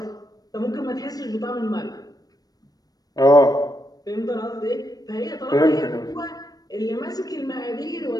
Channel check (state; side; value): late; right; 0.19 ms